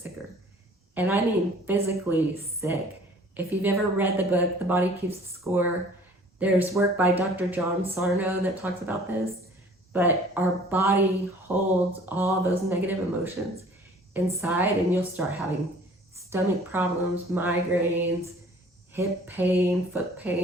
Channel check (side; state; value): both; normal; correlation 0.51